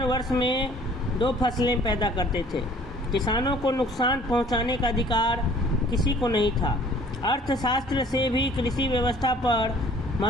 वर्ष में 2 फसलें पैदा करते थे। किसानों को नुकसान पहुंचाने का अधिकार किसी को नहीं था। अर्थशास्त्र से भी कृषि व्यवस्था पर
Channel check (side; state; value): both; normal; correlation 0.54